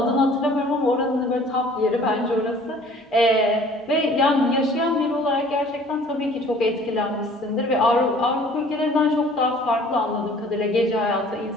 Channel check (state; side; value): normal; both; correlation 0.52